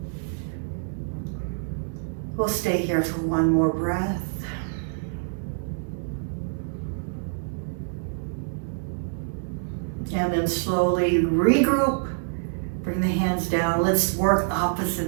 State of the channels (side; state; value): left; silent; digital silence